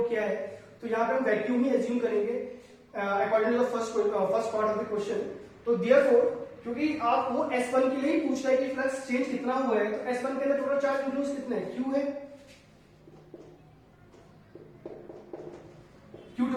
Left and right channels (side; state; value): both; identical; correlation 1.00